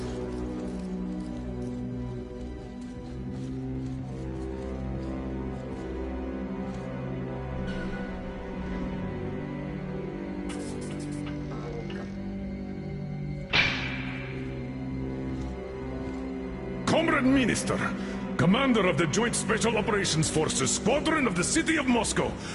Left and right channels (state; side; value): identical; both; correlation 1.00